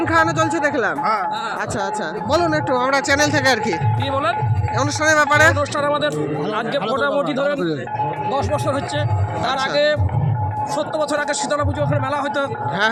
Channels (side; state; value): both; identical; correlation 1.00